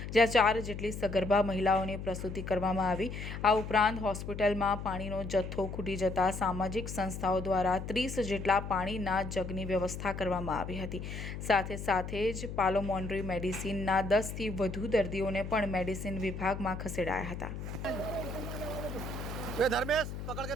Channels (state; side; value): noise; left; hum, 7 dB below the sound